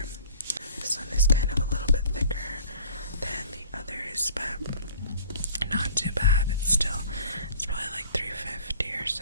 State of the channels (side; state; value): both; inverted; correlation -0.49